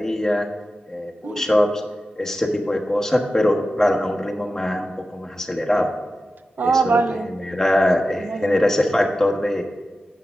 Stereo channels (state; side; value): normal; both; correlation 0.93